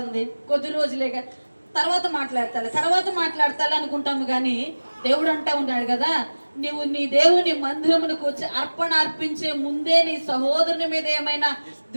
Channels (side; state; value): both; inverted; correlation -1.00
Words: కొద్ది రోజులేగా తర్వాత మాట్లాడతాలి అనుకుంటాము. కానీ దేవుడు అంటా ఉన్నాడు కదా, నువ్వు నీ దేవుని మందిరమునకు వచ్చి అర్పణ అర్పించే ముందే నీ సహోదరుని మీద ఏమైనా